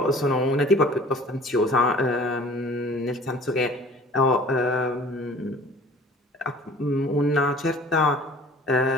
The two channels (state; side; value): normal; both; correlation 0.49